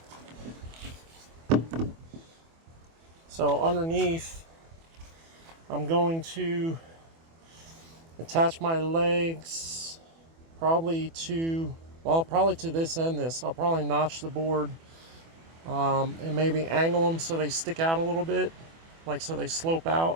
so underneath, I'm going to attach my legs probably to this and this. I'll probably notch the board and maybe angle them so they stick out a little bit, like so they slope out.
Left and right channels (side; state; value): left; late; 24 ms